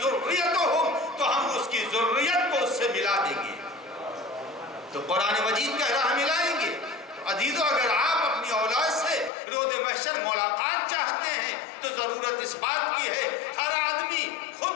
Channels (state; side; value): drops out; right; at 9.3 s